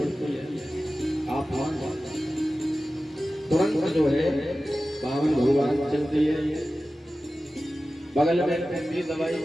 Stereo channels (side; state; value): both; normal; correlation 0.95